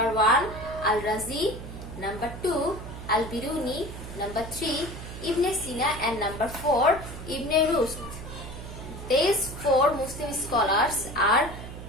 1, Al-Razi. Number 2, Al-Biruni. Number 3, Ibn Sina, and number 4, Ibn Rushd. These four Muslim scholars are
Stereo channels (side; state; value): right; noise; hum, 11 dB below the sound